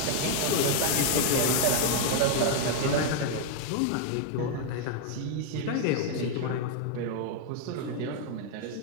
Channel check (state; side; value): different; both; correlation 0.00